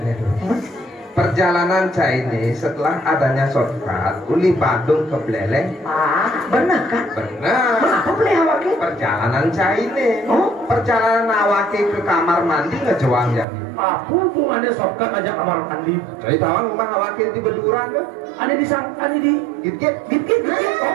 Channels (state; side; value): drops out; left; at 13.5 s